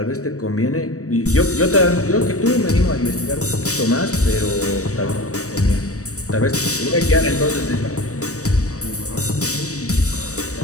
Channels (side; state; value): right; late; 0.65 ms